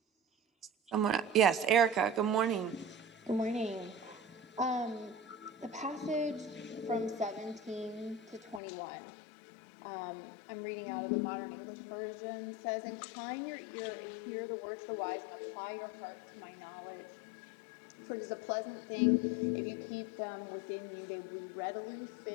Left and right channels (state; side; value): drops out; right; at 8.6 s